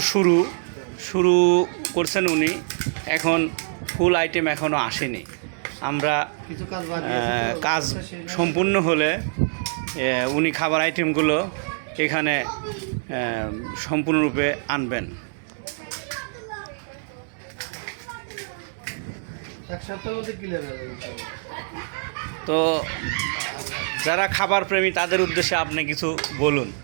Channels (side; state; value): left; silent; 62 dB below the other